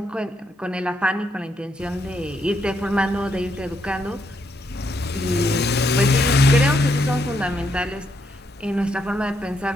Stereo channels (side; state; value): both; normal; correlation 0.77